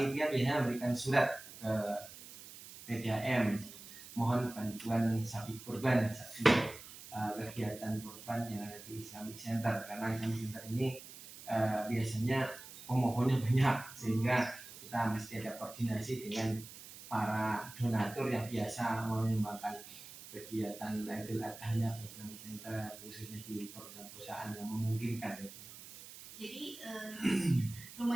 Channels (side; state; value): right; noise; hiss, 15 dB below the sound